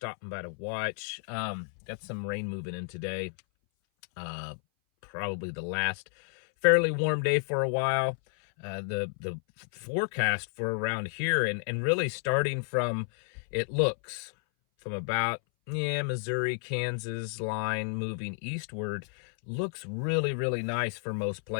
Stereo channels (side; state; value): right; silent; 57 dB below the other